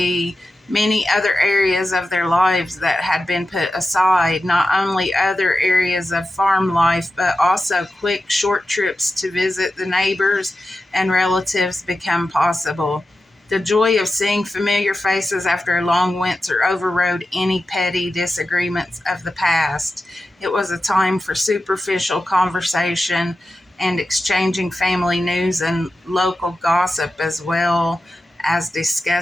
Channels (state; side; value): normal; both; correlation 0.92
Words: many other areas of their lives that had been put aside, not only other areas of farm life, but also quick, short trips to visit the neighbors and relatives become possible. The joy of seeing familiar faces after a long winter overrode any petty disagreements of the past. It was a time for superficial conversation and exchanging family news and local gossip, as well as